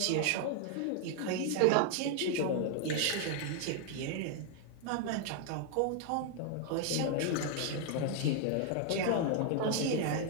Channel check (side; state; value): both; different; correlation 0.01